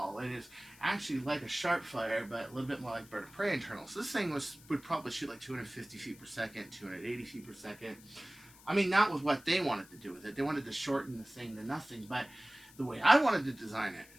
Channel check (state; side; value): noise; left; hiss, 23 dB below the sound